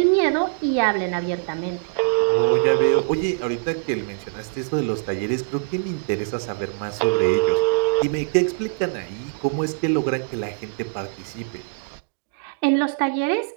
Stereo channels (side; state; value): left; silent; digital silence